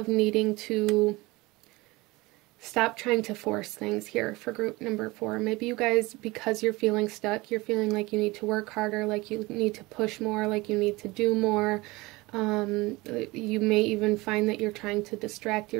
needing to stop trying to force things here for group number 4. Maybe you guys, because you're feeling stuck, you're feeling like you need to work harder, like you need to push more, like you need to do more. You may even find that you're trying to distract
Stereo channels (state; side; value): quieter; left; 22.2 dB